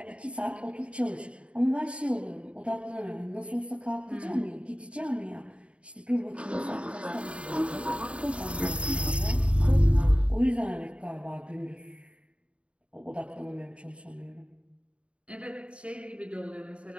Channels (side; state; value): left; late; 0.060 ms